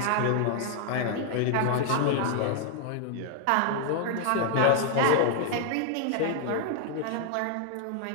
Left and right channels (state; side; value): different; both; correlation 0.00